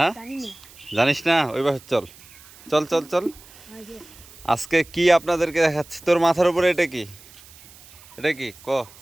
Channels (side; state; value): right; noise; hiss, 22 dB below the sound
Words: জানিস না? ওইবার চল চল চল চল। আজকে কি আপনাদেরকে দেখাচ্ছি। তোর মাথার উপরে এটা কি? এটা কি ক?